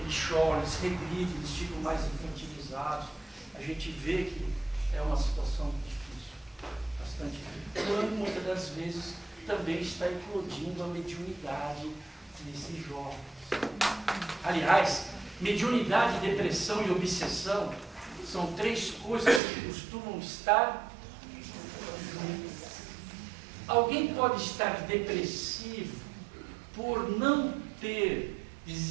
choram, eles regridem, eles ficam mais infantilizados. A gente vê que é uma situação difícil, bastante difícil. Quando muitas das vezes também está eclodindo a mediunidade desses jovens. Aliás, mediunidade, depressão e obsessão são 3 coisas que costumam estar juntas. Alguém pode estar depressivo por não ter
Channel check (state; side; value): drops out; left; at 19.4 s